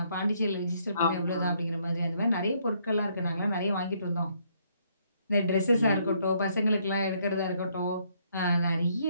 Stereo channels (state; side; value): inverted; both; correlation -0.70